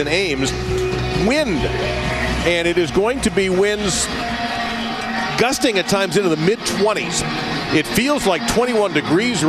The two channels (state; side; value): identical; both; correlation 1.00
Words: Ames, wind. And it is going to be winds gusting at times into the mid-20s. It feels like 21 degrees